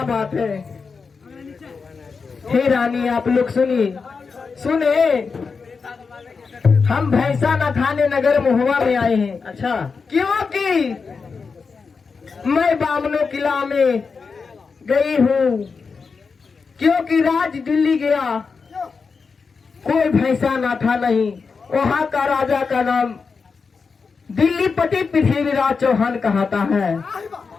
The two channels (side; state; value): right; quieter; 5.0 dB